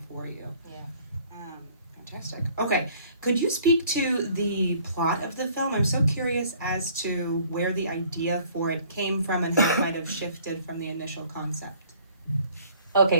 for you. Yeah. Fantastic. Okay, could you speak to the plot of the film? I'm so curious as to where the idea for it came from and how it might have shifted from the initial concept.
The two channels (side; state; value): both; inverted; correlation -0.57